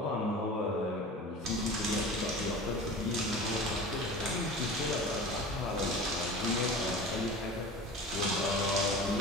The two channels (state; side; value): normal; both; correlation 0.36